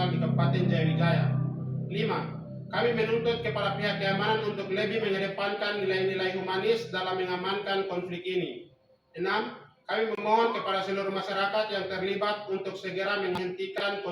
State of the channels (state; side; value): identical; both; correlation 1.00